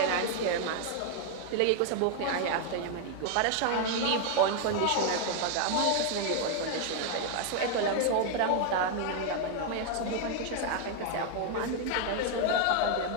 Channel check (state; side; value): different; both; correlation 0.00